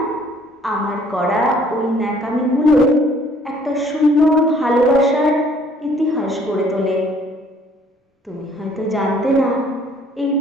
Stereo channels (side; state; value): both; normal; correlation 0.59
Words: আমার করা ওই ন্যাকামিগুলো একটা সুন্দর ভালোবাসার ইতিহাস গড়ে তোলে। তুমি হয়তো জানতে না, এই